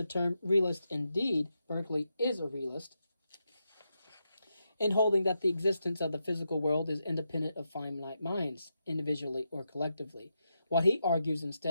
term realist, indeed, Berkeley is a realist, in holding that the existence of the physical world is independent of finite minds, individually or collectively. What he argues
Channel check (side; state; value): both; inverted; correlation -0.85